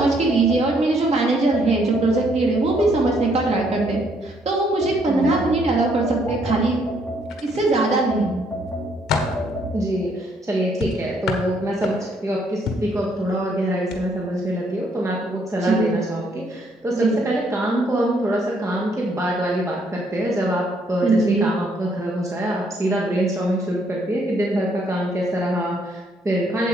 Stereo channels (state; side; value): normal; both; correlation 0.69